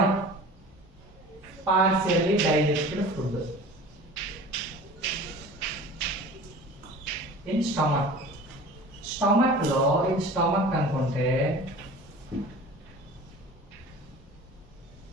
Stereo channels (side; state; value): both; normal; correlation 0.40